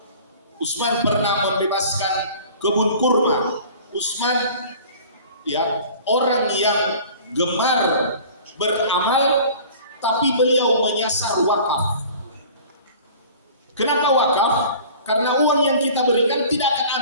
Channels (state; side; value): inverted; both; correlation -0.45